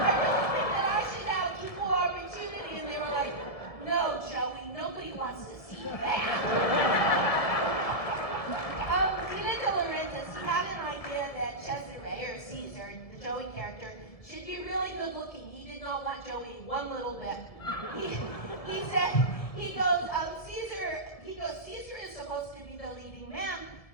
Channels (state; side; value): late; right; 1.7 ms